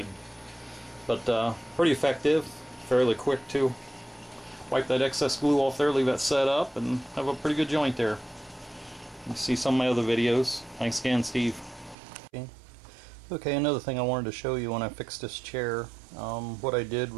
But pretty effective, fairly quick too. Wipe that excess glue off there, leave that set up, and have a pretty good joint there. You see some of my other videos. Thanks again, Steve. Okay, another thing I wanted to show you when I fixed this chair. What I did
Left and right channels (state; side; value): drops out; left; at 12.0 s